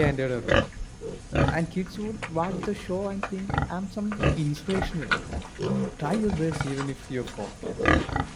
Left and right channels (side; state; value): both; identical; correlation 1.00